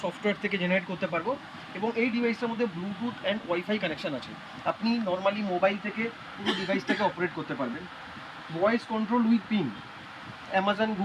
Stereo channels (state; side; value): identical; both; correlation 1.00